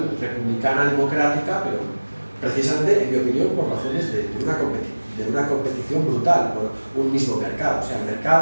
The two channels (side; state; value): both; inverted; correlation -1.00